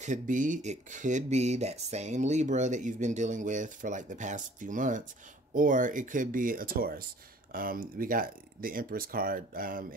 could be that same Libra that you've been dealing with for like the past few months, or it could be a Taurus. We got the Empress card,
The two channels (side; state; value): both; normal; correlation 0.53